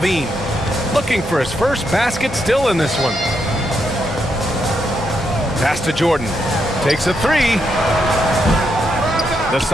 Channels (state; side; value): normal; both; correlation 0.80